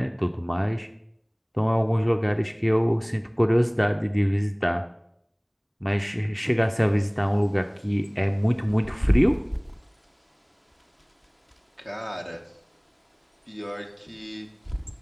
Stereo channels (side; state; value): both; identical; correlation 1.00